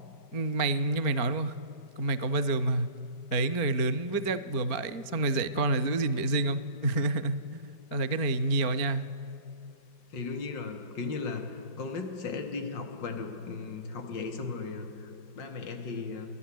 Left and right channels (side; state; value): right; late; 4.5 ms